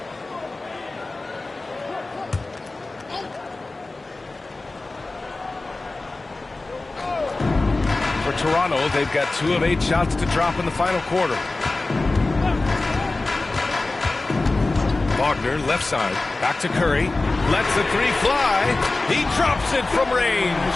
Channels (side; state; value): right; quieter; 3.2 dB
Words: For Toronto, they've got 2 of 8 shots to drop in the final quarter. Wagner, left side, back to Curry, lets the three fly, he drops it from range.